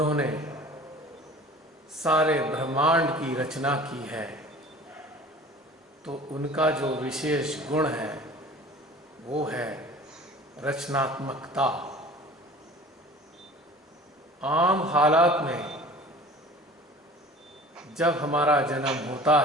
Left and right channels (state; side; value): normal; both; correlation 0.43